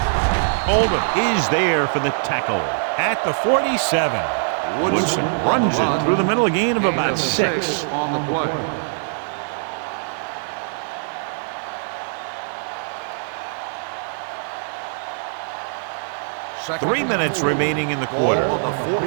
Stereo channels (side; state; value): left; silent; digital silence